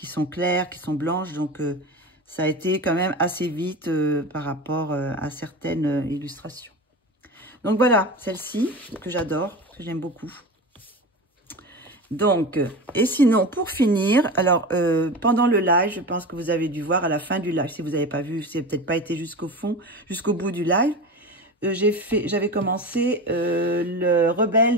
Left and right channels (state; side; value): normal; both; correlation 0.28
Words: claires, qui sont blanches. Donc, ça a été quand même assez vite par rapport à certaines illustrations. Donc voilà, celle-ci que j'adore, que j'aime beaucoup. Donc, et sinon, pour finir, alors pendant le live, je pense que vous avez dû voir à la fin du live, si vous n'avez pas vu, si vous n'avez peut-être pas été jusqu'au bout du live, j'avais commencé le